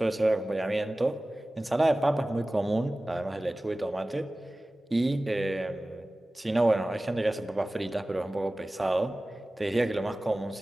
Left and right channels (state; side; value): normal; both; correlation 0.97